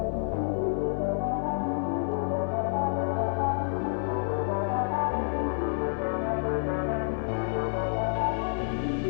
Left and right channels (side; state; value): right; silent; 59 dB below the other